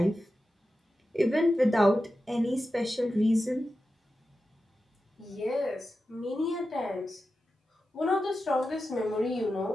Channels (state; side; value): normal; both; correlation 0.92